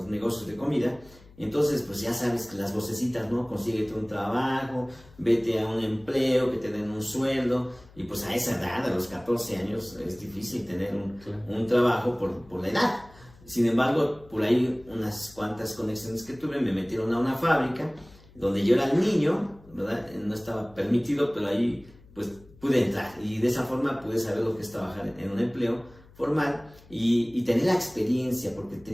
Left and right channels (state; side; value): noise; left; hum, 24 dB below the sound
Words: negocios de comida, entonces pues ya sabes que las vocecitas, ¿no? Consíguete un trabajo, vete a un empleo, que te den un sueldo, y pues a esa edad, a los 14 años, es difícil tener un trabajo por la edad. Sin embargo, por ahí unas cuantas conexiones que tuve me metieron a una fábrica donde yo era el niño, ¿verdad? No estaba permitido, pero ahí pues pude entrar y de esa forma pude saber lo que es trabajar en un empleo formal y tener la experiencia, porque